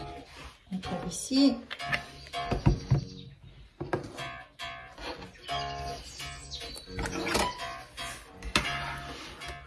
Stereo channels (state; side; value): identical; both; correlation 1.00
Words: On tape ici.